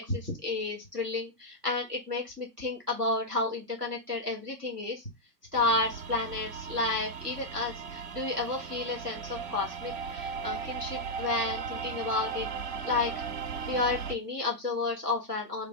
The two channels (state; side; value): late; left; 2.0 ms